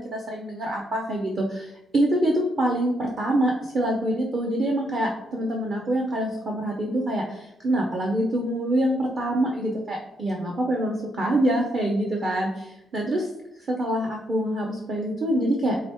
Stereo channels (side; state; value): both; normal; correlation 0.76